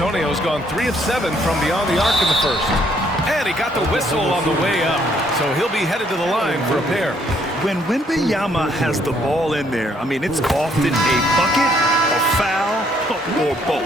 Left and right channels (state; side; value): normal; both; correlation 0.67